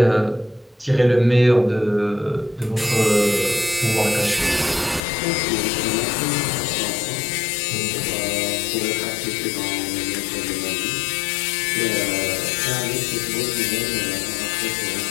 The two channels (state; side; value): drops out; right; at 5.0 s